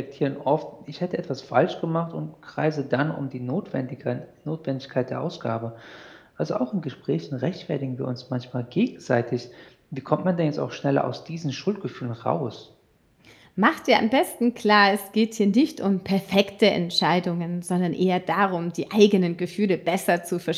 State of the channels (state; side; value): identical; both; correlation 1.00